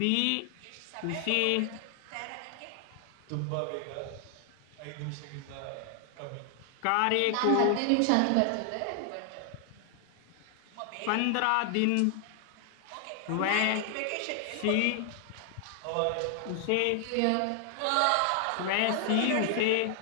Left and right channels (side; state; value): both; different; correlation 0.00